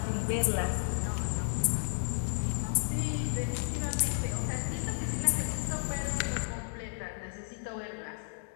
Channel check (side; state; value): right; silent; digital silence